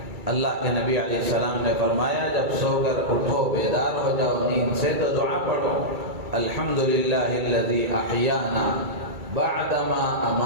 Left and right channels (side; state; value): left; late; 2.3 ms